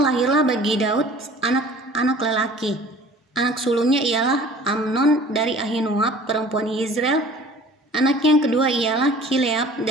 bagi Daud anak-anak lelaki. Anak sulungnya ialah Amnon dari Ahinoam perempuan Yizreel. Anak yang kedua ialah Kileab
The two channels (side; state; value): both; normal; correlation 0.48